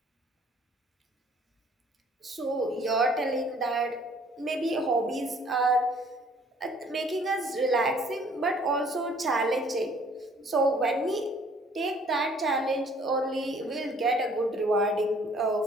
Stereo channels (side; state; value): both; normal; correlation 0.58